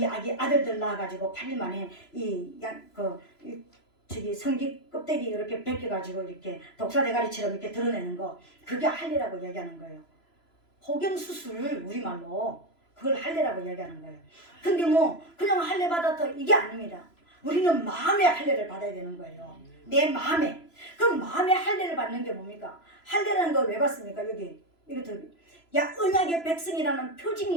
아들들 낳아가지고 8일 만에 성기 껍데기 이렇게 벗겨가지고 이렇게 독사 대가리처럼 이렇게 드러내는 거, 그게 할례라고 얘기하는 거예요. 호경수술, 우리말로 그걸 할례라고 얘기하는 거예요. 근데 뭐 그냥 할례 받았다 이게 아닙니다. 우리는 마음의 할례를 받아야 되는 거예요. 내 마음에. 그럼 마음의 할례를 받는 게 뭡니까? 할례라는 걸 왜 받습니까? 여기 이것도 언약의 백성이라는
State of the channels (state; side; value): late; right; 3.0 ms